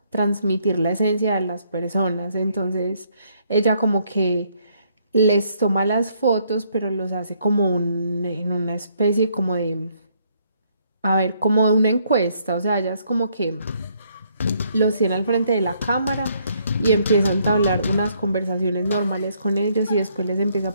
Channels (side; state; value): both; inverted; correlation -0.69